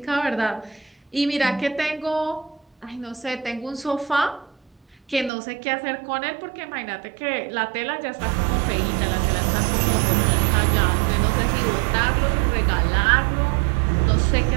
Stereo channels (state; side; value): drops out; left; at 5.3 s